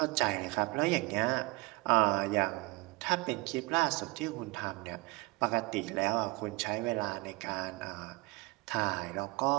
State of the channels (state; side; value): quieter; left; 24.2 dB